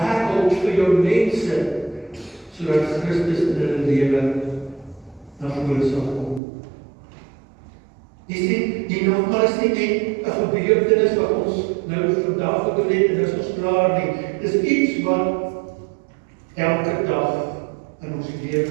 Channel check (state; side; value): drops out; left; at 6.4 s